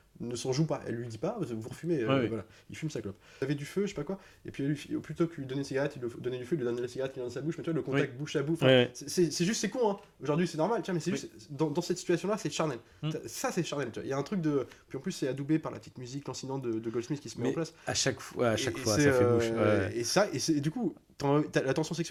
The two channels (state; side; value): identical; both; correlation 1.00